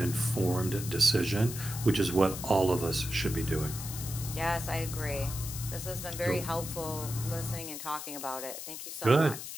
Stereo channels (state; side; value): noise; left; hiss, 8 dB below the sound